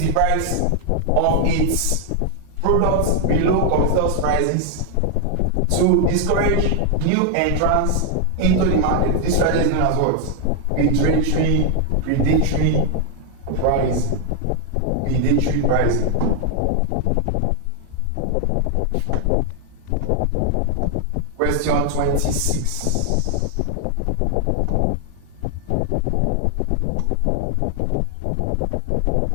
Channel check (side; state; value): both; different; correlation 0.00